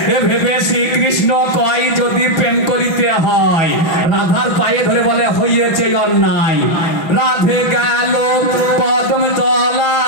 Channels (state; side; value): late; right; 5.8 ms